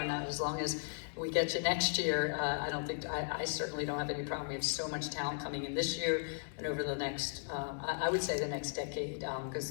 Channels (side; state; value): right; silent; 53 dB below the other